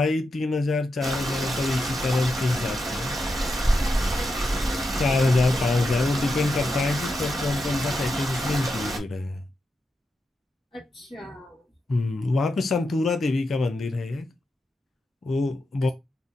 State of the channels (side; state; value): both; normal; correlation 0.86